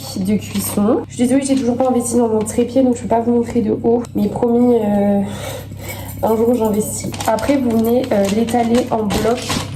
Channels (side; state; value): both; identical; correlation 1.00